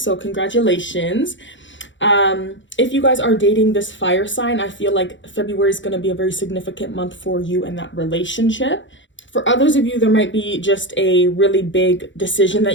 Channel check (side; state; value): right; late; 0.54 ms